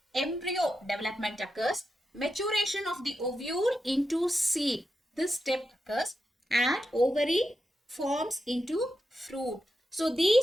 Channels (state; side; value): normal; both; correlation 0.88